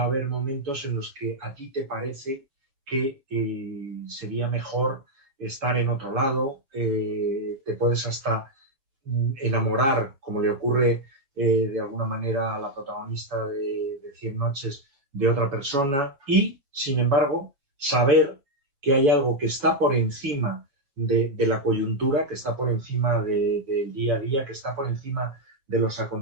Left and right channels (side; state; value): left; late; 7.1 ms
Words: a haber momentos en los que a ti te parece que sería mejor estar en otro lado, te puedes hasta enamorar, como le ocurre de alguna manera a la protagonista de 100 noches, de otra persona y, sin embargo, saber que hay algo que está por encima de la coyuntura, que está por encima del día a día, que está por encima de los